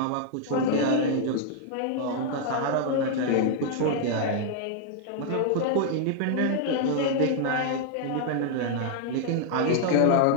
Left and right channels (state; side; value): different; both; correlation 0.00